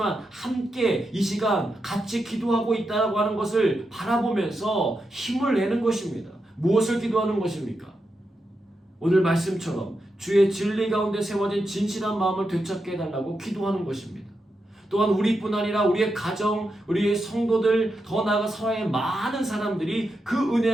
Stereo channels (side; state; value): both; normal; correlation 0.86